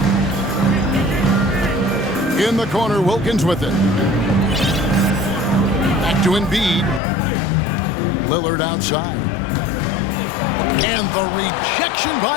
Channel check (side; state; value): right; drops out; at 7.0 s